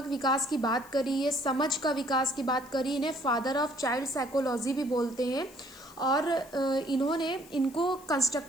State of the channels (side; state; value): left; noise; hiss, 22 dB below the sound